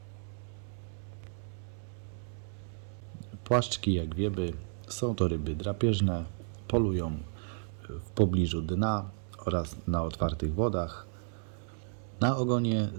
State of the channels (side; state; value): left; silent; digital silence